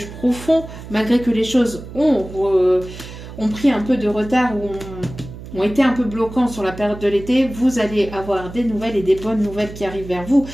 profond, malgré que les choses ont pris un peu de retard ou ont été un peu bloquants sur la période de l'été, vous allez avoir des nouvelles et des bonnes nouvelles qui arrivent vers vous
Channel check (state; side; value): noise; right; hum, 13 dB below the sound